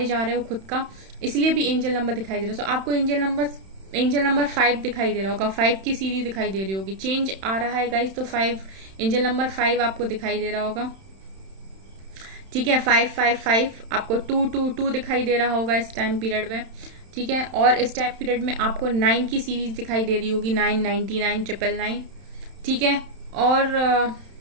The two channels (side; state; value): left; late; 31 ms